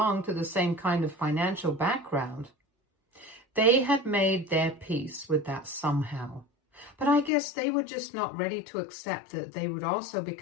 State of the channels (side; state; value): right; drops out; at 7.3 s